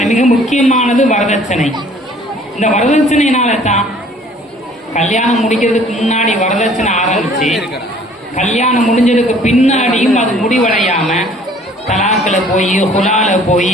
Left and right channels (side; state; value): both; normal; correlation 0.55